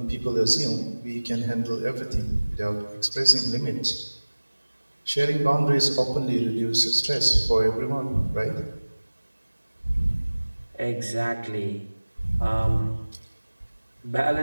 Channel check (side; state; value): both; inverted; correlation -1.00